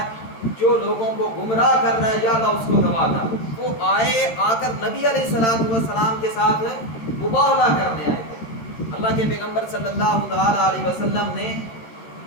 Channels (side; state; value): right; late; 13 ms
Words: جو لوگوں کو گمراہ کر رہا ہے، یا اللہ اس کو دبا کر۔ وہ آ کر نبی علیہ السلام کے ساتھ مباہلہ کرنے آئے تھے۔ اللہ کے پیغمبر صلی اللہ تعالی علیہ وسلم نے